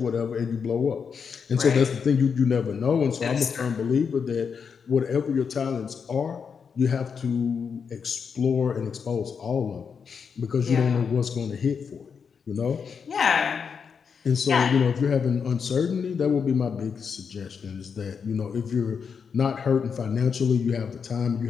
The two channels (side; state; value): right; quieter; 6.3 dB